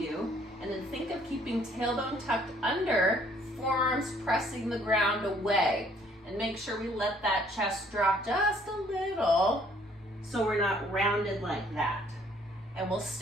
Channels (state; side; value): normal; both; correlation 0.62